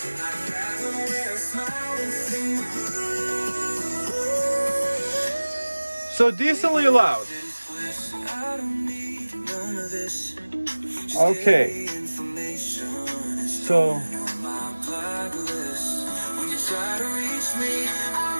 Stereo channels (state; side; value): inverted; both; correlation -1.00